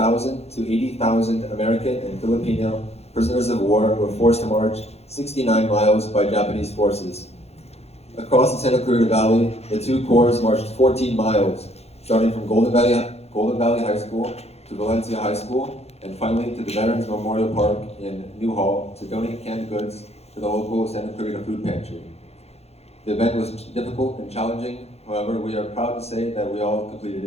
to 80,000 American and Filipino prisoners of war were forced to march 69 miles by Japanese forces. Across the Santa Clarita Valley, the two corps marched 14 miles, starting from Golden Valley High School to Valencia High School, and finally to the Veterans Memorial Park in Newhall to donate canned goods to the local Santa Clarita Food Pantry. The event was difficult and challenging, however, we are proud to say that we all completed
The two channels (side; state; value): right; late; 0.30 ms